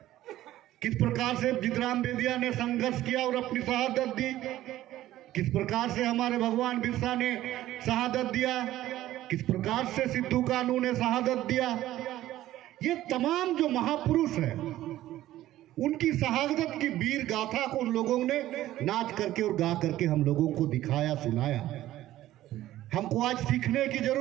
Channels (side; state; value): left; quieter; 14.4 dB